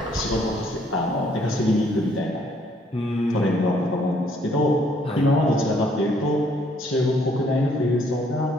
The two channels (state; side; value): normal; both; correlation 0.66